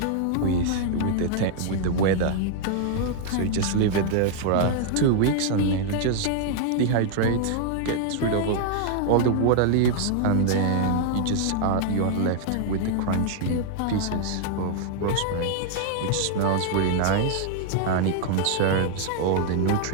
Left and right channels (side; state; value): both; different; correlation 0.00